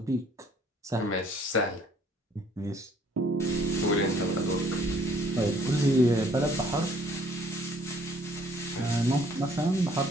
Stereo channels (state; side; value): normal; both; correlation 0.60